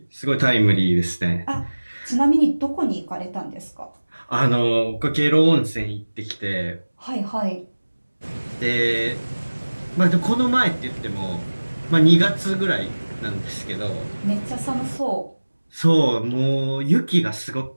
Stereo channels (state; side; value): inverted; both; correlation -1.00